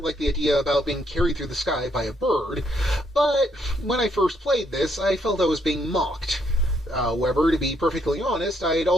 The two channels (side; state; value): both; normal; correlation 0.73